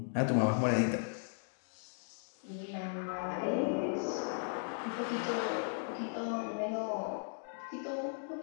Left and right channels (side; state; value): right; silent; digital silence